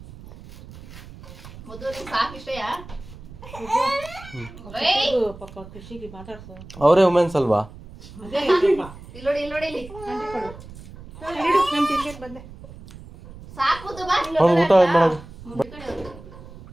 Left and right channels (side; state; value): right; noise; rumble, 17 dB below the sound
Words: ಅವರೇ ವುಮೆನ್ಸ್ ಅಲ್ವಾ? ಅದೇ ಐತಪ್ಪ. ಇಲ್ಲಿ ನೋಡಿ ಇಲ್ಲಿ ಆಂಟಿ ಕೊಡು. ಇಡು, ನಾನು ತಿನ್ಲಿಕ್ಕೆ ಬಂದೆ. ಸಾಕು ಬಾ ಅವ್ನು ಊಟ ಮಾಡೋದು ಈ ಕಡೆ ಹೋಗು.